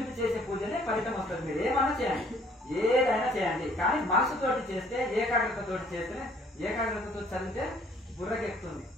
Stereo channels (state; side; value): normal; both; correlation 0.60